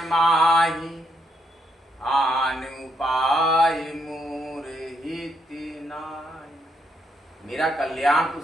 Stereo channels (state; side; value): normal; both; correlation 0.76